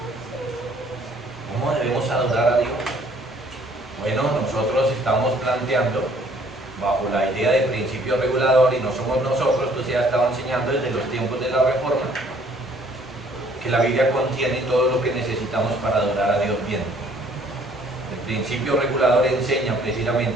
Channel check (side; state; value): both; normal; correlation 0.60